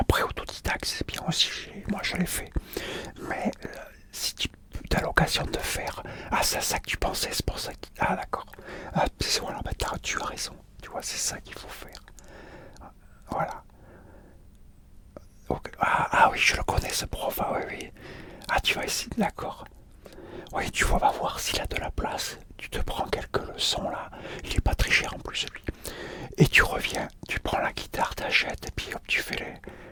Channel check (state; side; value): identical; both; correlation 1.00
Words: autodidacte, c'est bien aussi, moi je l'ai fait. Mais si tu as l'occasion de faire, ah, c'est ça que tu pensais, c'est pour ça que. Ah, d'accord. Ah, voilà, bah, tu as raison. Tu vois, c'est ça qu'il faut faire. Voilà. Ok. Ah, ah oui, je le connais ce prof. Ah oui, oui. Ah, tu vas essayer, d'accord. Oui, tu vas voir s'il a de la place. Tu te prends quelques leçons là. Il est pas très cher en plus, lui. Et tu reviens, tu prends la guitare, t'achètes, et puis hop, tu fais les.